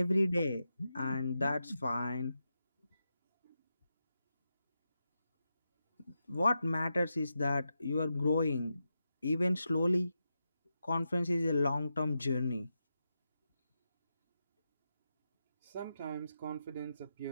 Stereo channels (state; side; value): inverted; both; correlation -0.87